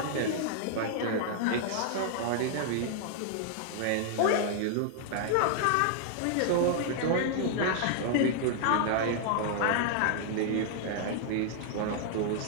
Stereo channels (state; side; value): different; both; correlation -0.01